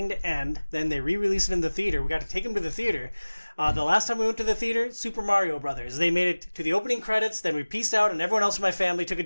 to end. Then they re-released it in the theater. We got to take them to the theater. The last time we went to the theater, Super Mario Brothers. They made it to the opening credits, then we pieced out, and everyone else in my family took a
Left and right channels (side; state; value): both; inverted; correlation -1.00